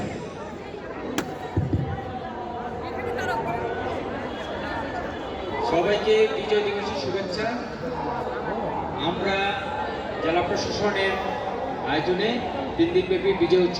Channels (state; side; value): identical; both; correlation 1.00